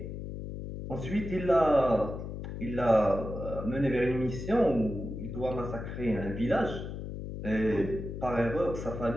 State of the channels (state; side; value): noise; left; hum, 7 dB below the sound